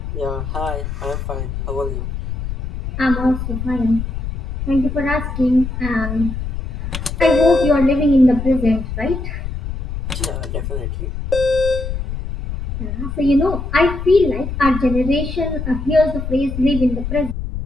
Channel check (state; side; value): noise; left; rumble, 5 dB below the sound